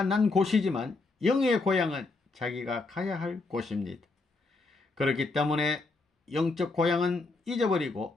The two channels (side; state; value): right; quieter; 3.6 dB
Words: 난 곳이지만 영의 고향은 자기가 가야 할 곳입니다. 그렇기 때문에 영적 고향은